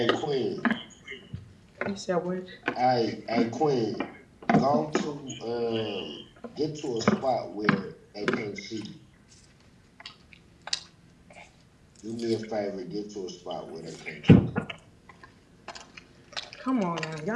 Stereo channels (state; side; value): identical; both; correlation 1.00